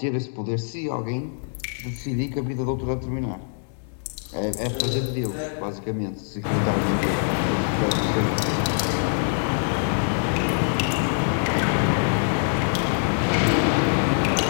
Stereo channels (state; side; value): silent; right; digital silence